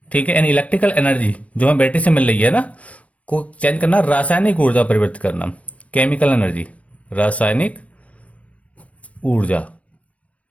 ठीक है, यानी इलेक्ट्रिकल एनर्जी जो हमें बैटरी से मिल रही है ना, को चेंज करना, रासायनिक ऊर्जा परिवर्तित करना, केमिकल एनर्जी, रासायनिक ऊर्जा,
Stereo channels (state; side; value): late; right; 0.066 ms